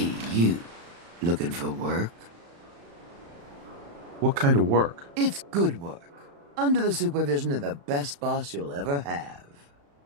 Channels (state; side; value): late; left; 35 ms